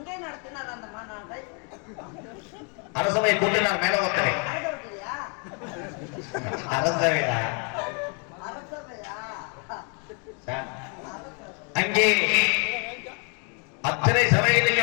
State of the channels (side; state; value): right; quieter; 37.5 dB